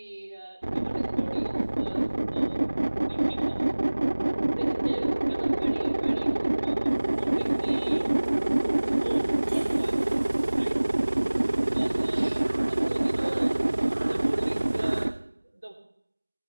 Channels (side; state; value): both; inverted; correlation -1.00